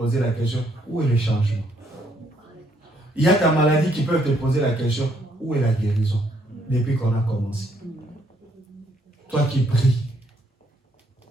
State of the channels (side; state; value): both; normal; correlation 0.70